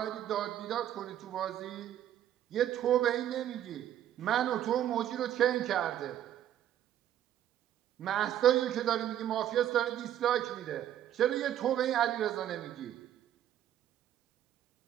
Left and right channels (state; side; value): quieter; left; 11.4 dB